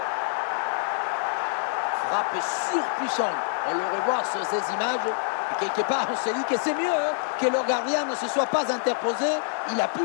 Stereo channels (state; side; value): silent; right; digital silence